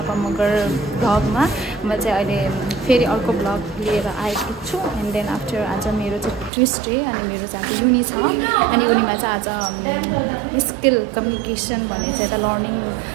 Magar vlog ma. म चाहिँ अहिले फेरि अर्को vlog लिएर आएको छु and then after आज मेरो चाहिँ Tuesday अनि मेरो चाहिँ आज युनि छ अनि युनिमा चाहिँ आज स्किल कम्युनिकेसन भन्ने चाहिँ एउटा लर्निङ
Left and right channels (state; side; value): drops out; left; at 6.5 s